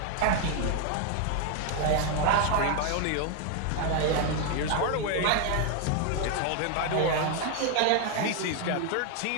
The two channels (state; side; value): different; both; correlation 0.01